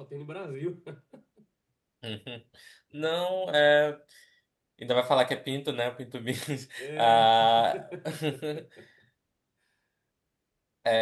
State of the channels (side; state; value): both; identical; correlation 1.00